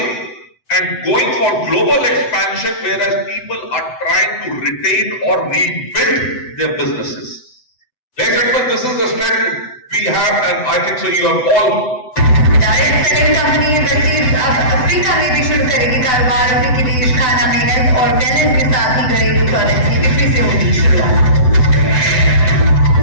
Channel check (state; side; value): late; right; 7.9 ms